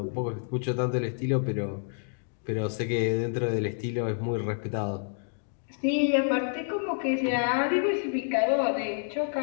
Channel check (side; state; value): right; silent; digital silence